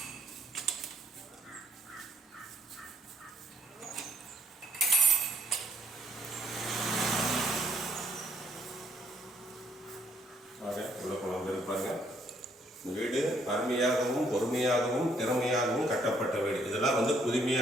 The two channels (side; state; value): both; normal; correlation 0.67